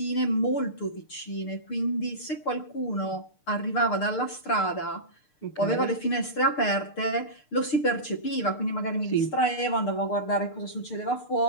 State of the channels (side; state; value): right; late; 6.7 ms